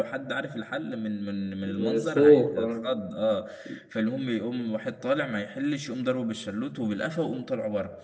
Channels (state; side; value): identical; both; correlation 1.00